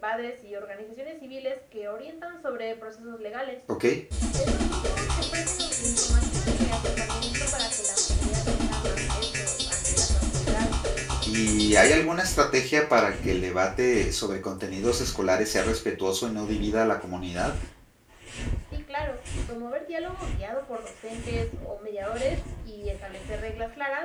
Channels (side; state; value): both; identical; correlation 1.00